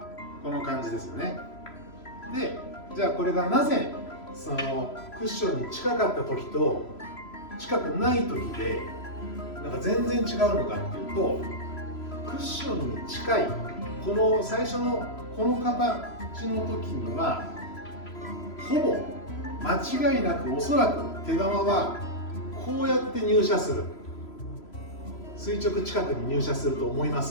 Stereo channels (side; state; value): right; late; 3.0 ms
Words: この感じですよね。で、じゃあこれがなぜそのクッションに近かった時と近くない時で全然違うのかっていうと、クッションに近いこの最初のこの形の時にはほぼ間違いなく、おそらく手玉はこうやって入射する、垂直近くに入射すると思いま